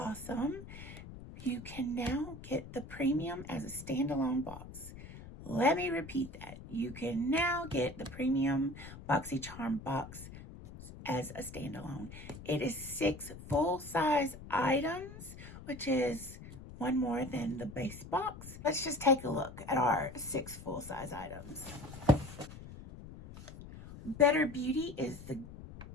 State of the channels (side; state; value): left; noise; rumble, 14 dB below the sound